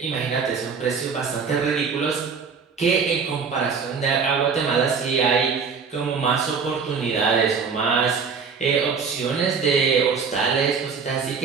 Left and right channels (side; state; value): left; quieter; 5.6 dB